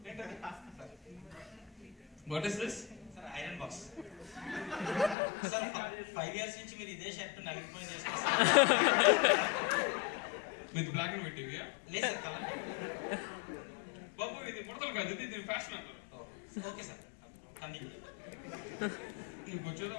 What is this? Sir, iron box. Sir, 5 years నుంచి మీరు ఇదే షర్ట్ నలిగిపోయి చేసుకొస్తారు. విత్ బ్లాక్ అండ్ వైట్ టీవీయా? లేదు సార్, కలర్. బాబు, ఇది ముడతలు కాదు, ఇది ఫ్యాషన్ అంటారు. Okay sir, continue. నీకు వచ్చేదో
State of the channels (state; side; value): drops out; right; at 5.2 s